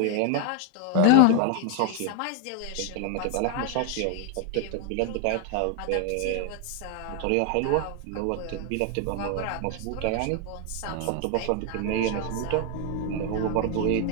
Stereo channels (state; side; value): different; both; correlation 0.00